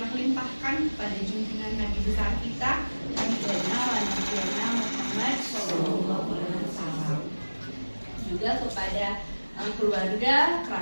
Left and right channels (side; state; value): both; inverted; correlation -1.00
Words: limpahkan pada junjungan Nabi besar kita Nabi Muhammad SAW, juga kepada keluarga,